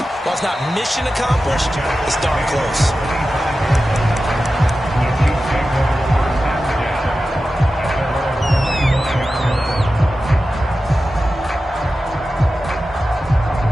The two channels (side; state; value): both; normal; correlation 0.93